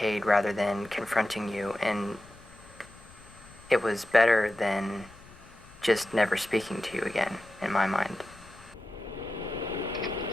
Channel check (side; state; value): left; noise; rumble, 22 dB below the sound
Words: rather than confronting you. And it was better than just never speaking to you again, in my mind.